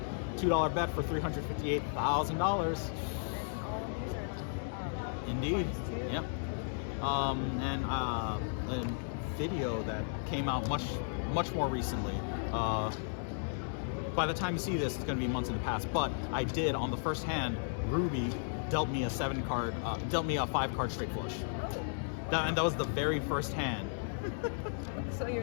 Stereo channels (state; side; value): silent; right; digital silence